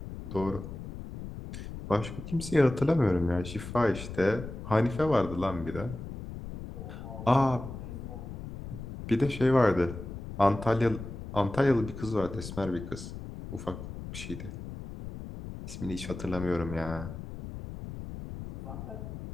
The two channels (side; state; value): left; noise; rumble, 10 dB below the sound